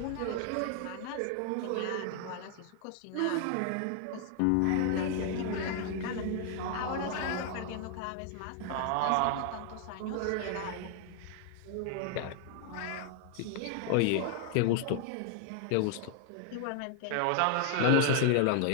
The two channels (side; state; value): both; different; correlation 0.00